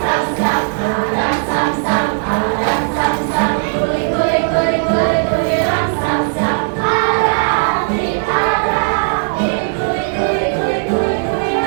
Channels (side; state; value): left; silent; 56 dB below the other